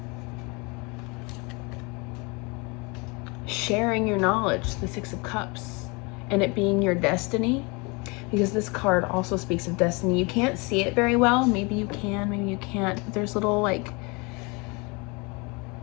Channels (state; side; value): quieter; right; 28.8 dB